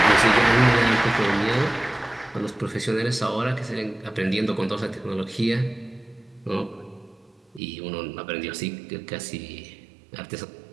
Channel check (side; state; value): left; drops out; at 7.6 s